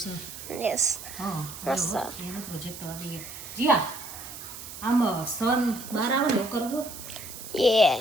છે. યસ હા મસ્ત. એનો પ્રોજેક્ટ કરવા દઈએ. જીયા આમ સન બહાર આવે ને એવું કરવું. યે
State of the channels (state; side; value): noise; right; hiss, 12 dB below the sound